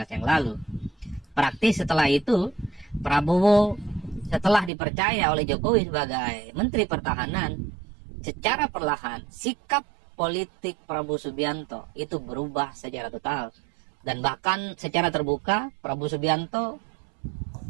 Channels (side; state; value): left; drops out; at 4.7 s